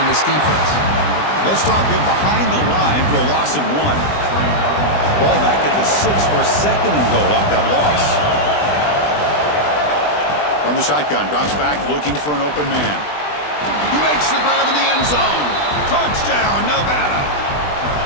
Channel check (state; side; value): late; right; 20 ms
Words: this defense. They'll stop him behind the line for a loss of 1. Ball back at the 6 for a 2nd and goal off that loss. From the shotgun, drops back looking for an open man. He makes the grab in the end zone. Touchdown, Nevada.